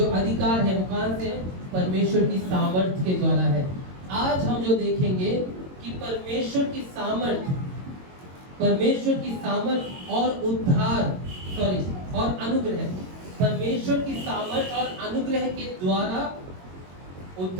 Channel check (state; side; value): late; left; 22 ms